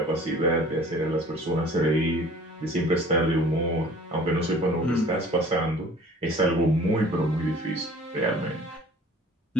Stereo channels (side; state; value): both; normal; correlation 0.49